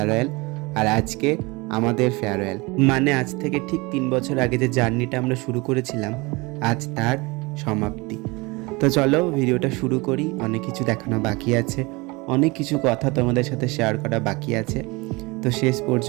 আর আজকে আমাদের ফেয়ারওয়েল। মানে আজ থেকে ঠিক 3 বছর আগে যে জার্নিটা আমরা শুরু করেছিলাম, আজ তার সমাপ্তি। তো চলো ভিডিওটা শুরু করি। অনেক কিছু দেখানো বাকি আছে, অনেক কিছু কথা তোমাদের সাথে শেয়ার করা বাকি আছে। তো শেষ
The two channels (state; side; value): quieter; left; 25.0 dB